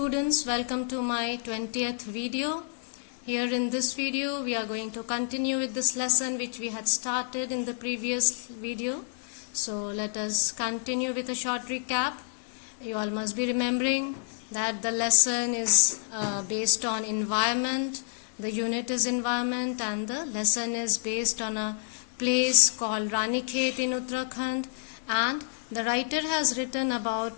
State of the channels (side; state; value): right; silent; digital silence